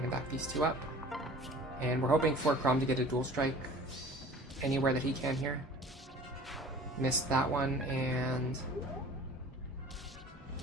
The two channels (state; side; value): normal; both; correlation 0.44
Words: back these two up. And we're hoping for Chrom to get a dual strike anywhere that he can here. Missed that one and